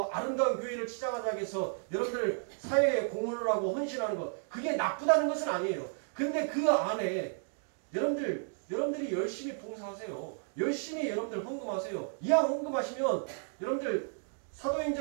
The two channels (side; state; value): left; silent; digital silence